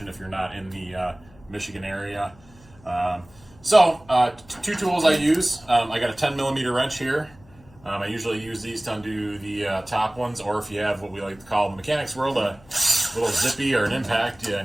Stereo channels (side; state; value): left; noise; hum, 26 dB below the sound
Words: if you're not in the Michigan area. Two tools I use. I got a 10 millimeter wrench here. I usually use these to undo the top ones, or if you have what we like to call in the mechanics world a little zippy or an impact,